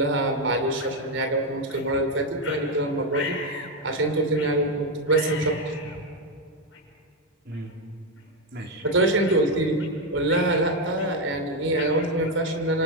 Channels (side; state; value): both; normal; correlation 0.06